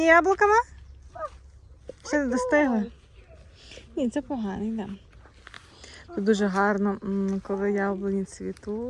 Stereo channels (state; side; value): identical; both; correlation 1.00